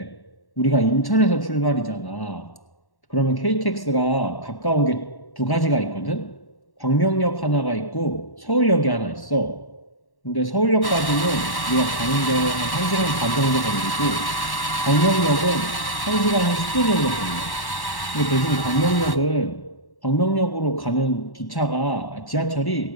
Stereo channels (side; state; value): right; late; 1.1 ms